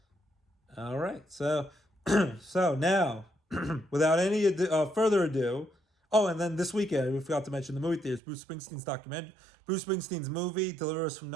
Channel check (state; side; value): drops out; left; at 8.2 s